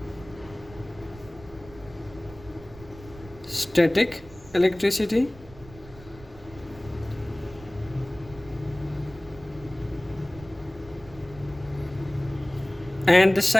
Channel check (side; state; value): right; noise; rumble, 19 dB below the sound